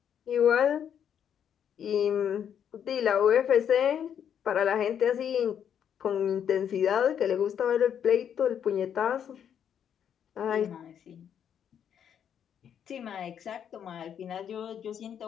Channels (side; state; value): right; quieter; 8.7 dB